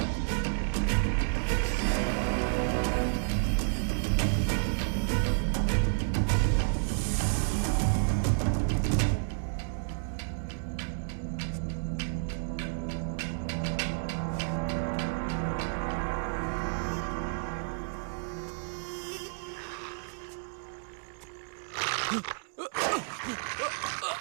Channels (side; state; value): left; silent; digital silence